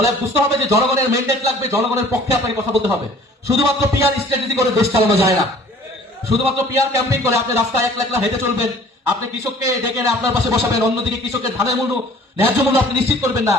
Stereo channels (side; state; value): both; normal; correlation 0.51